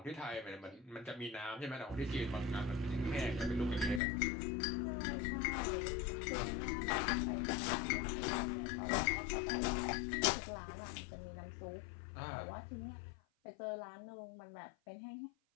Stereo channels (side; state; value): right; drops out; at 4.0 s